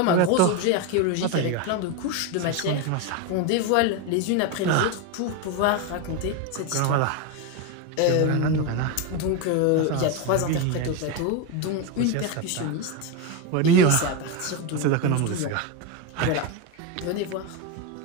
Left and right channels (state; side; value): different; both; correlation 0.03